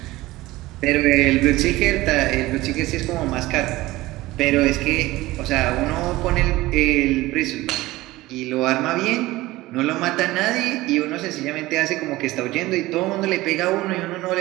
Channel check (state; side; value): quieter; left; 18.4 dB